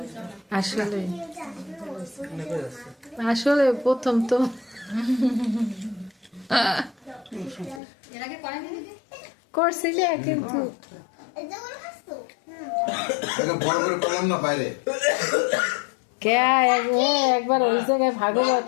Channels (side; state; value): right; drops out; at 7.8 s